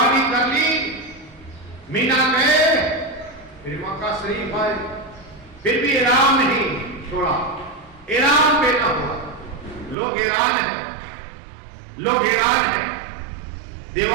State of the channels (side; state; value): left; drops out; at 10.0 s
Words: کر لی، مینا گئے، پھر مکہ شریف آئے، پھر بھی احرام نہیں چھوڑا، احرام پہنا ہوا۔ لوگ حیران ہیں، لوگ حیران ہیں۔